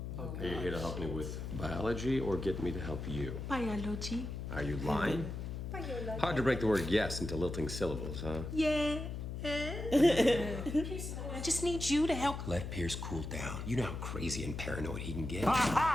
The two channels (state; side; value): noise; left; hum, 6 dB below the sound